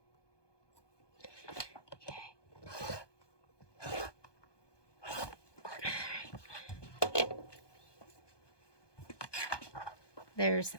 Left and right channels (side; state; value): right; late; 1.2 ms